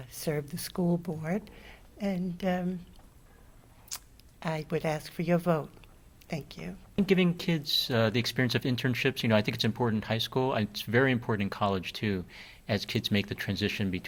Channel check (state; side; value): identical; both; correlation 1.00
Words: serve the school board, and I would ask for your vote. Thank you. Giving kids the experience of internships, I think it's important in high school. And it's very important in college too, as kids make the transition